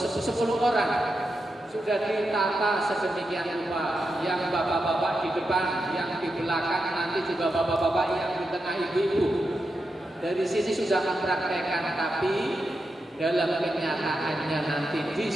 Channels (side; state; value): both; normal; correlation 0.87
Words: orang sudah ditata sedemikian rupa, yang bapak-bapak di depan, yang di belakang, nanti juga bapak-bapak yang di tengah, ibu-ibu dari sini sudah mempraktekkan. Tapi dalam kenyataannya nanti di